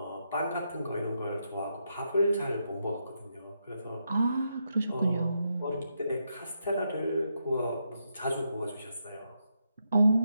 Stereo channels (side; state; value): both; inverted; correlation -0.82